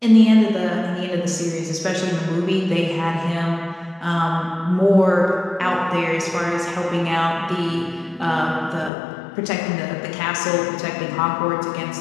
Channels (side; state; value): right; drops out; at 8.9 s